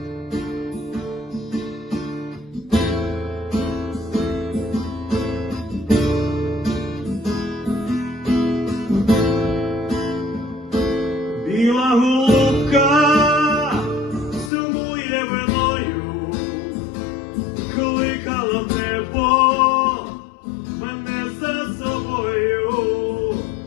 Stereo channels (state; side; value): drops out; right; at 14.5 s